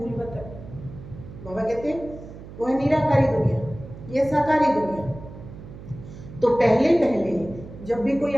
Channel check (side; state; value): right; noise; hum, 15 dB below the sound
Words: वतन। बाबा कहते हैं वो है निराकारी दुनिया, यह साकारी दुनिया। तो पहले पहले जब भी कोई